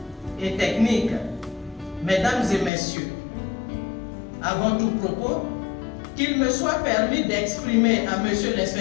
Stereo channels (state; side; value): drops out; right; at 2.7 s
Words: et techniques, mesdames et messieurs, avant tout propos, qu'il me soit permis d'exprimer à monsieur